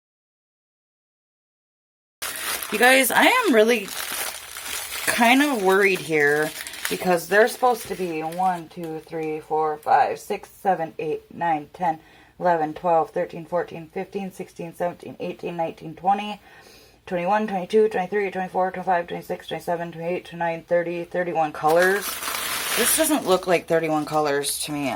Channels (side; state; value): both; identical; correlation 1.00